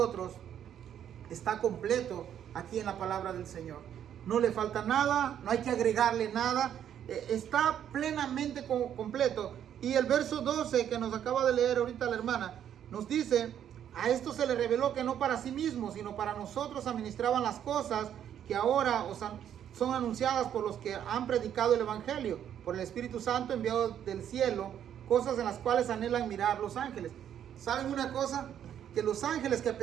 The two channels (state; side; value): quieter; left; 9.7 dB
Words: está completo aquí en la palabra del Señor. No le falta nada, no hay que agregarle nada, está plenamente completo. Y el verso 12 que nos acaba de leer ahorita la hermana, nos dice, a esto se le reveló que no para sí mismos, sino para nosotros administraban las cosas que ahora son anunciadas por los que han predicado el Evangelio. por el Espíritu Santo enviado del cielo, cosas en las cuales anhelan mirar los ángeles. ¿Saben una cosa? Que los ángeles que